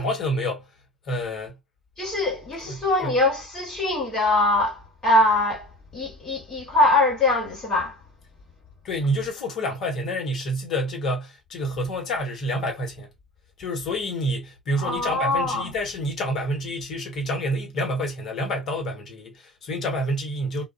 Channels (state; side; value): normal; both; correlation 0.39